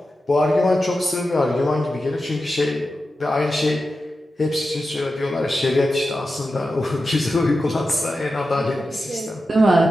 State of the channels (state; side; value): normal; both; correlation 0.91